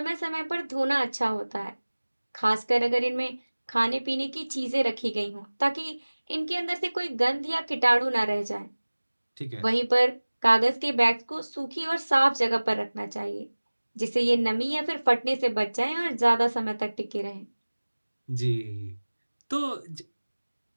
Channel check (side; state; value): both; inverted; correlation -1.00